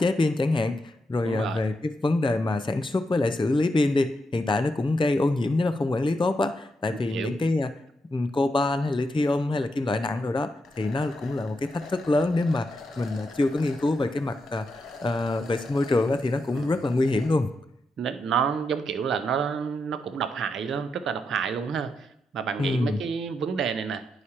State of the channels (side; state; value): both; normal; correlation 0.84